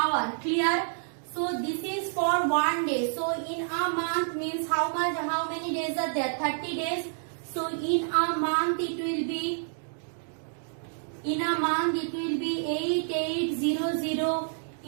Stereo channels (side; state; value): left; silent; digital silence